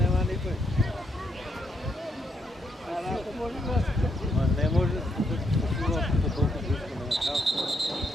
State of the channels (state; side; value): normal; both; correlation 0.77